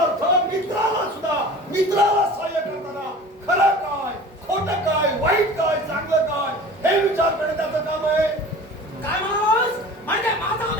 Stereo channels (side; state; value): both; normal; correlation 0.40